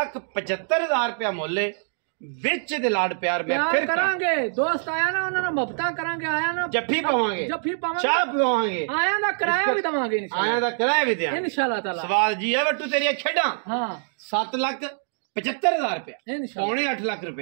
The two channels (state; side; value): silent; left; digital silence